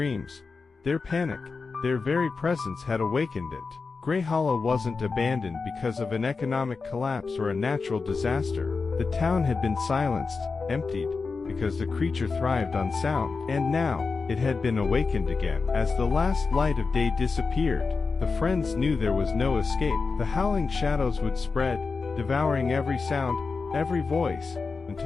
their panic, their very presence had awakened it. Grey Hollow wasn't abandoned because of an economic collapse or a natural disaster. The town had been silenced, emptied, because the creature thrived on sound. And now, it had been awakened again. As the last light of day disappeared, the friends knew there was no escape. The howling shadows would spread, devouring every sound, every voice,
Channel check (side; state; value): right; quieter; 4.5 dB